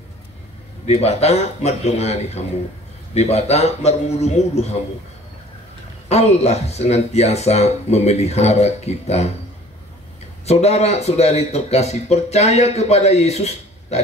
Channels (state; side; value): normal; both; correlation 0.50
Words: di bata madongani hamu di bata marmudu-mudu hamu. Allah senantiasa memelihara kita. Saudara-saudari terkasih, percaya kepada Yesus